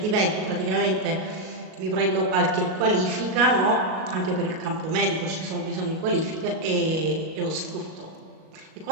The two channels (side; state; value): left; late; 38 ms